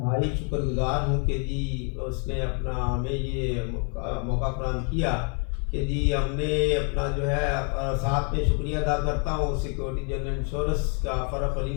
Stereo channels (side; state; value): right; quieter; 40.0 dB